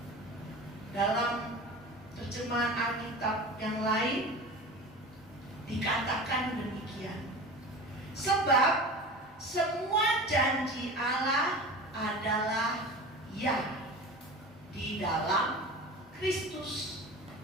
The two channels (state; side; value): normal; both; correlation 0.33